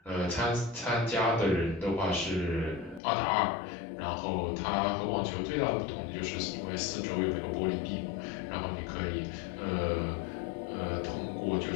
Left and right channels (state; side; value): drops out; right; at 3.0 s